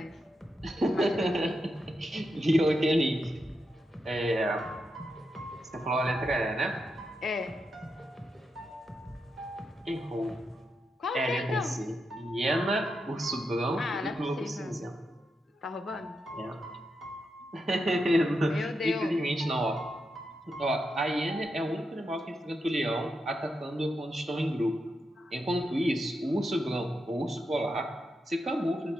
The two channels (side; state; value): both; normal; correlation 0.85